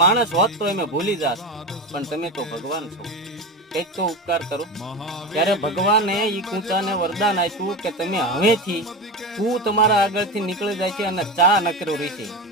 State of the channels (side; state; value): both; normal; correlation 0.22